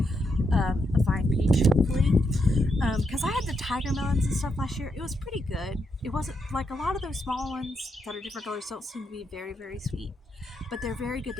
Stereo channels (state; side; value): normal; both; correlation 0.80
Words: a vine peach hopefully, because I had the tiger melons and stuff last year. It was pretty good. It wasn't like a lot of those small ones that are different colors don't seem to be very very sweet, but they're very good